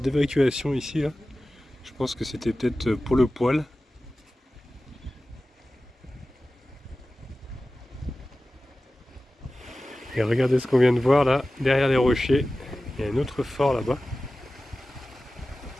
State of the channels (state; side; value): normal; both; correlation 0.95